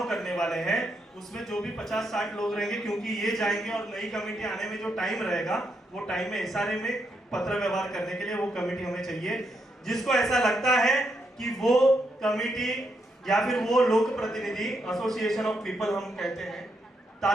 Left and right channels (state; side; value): normal; both; correlation 0.79